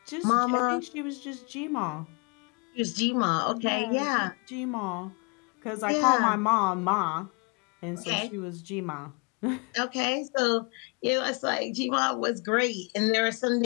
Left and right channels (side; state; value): right; quieter; 33.2 dB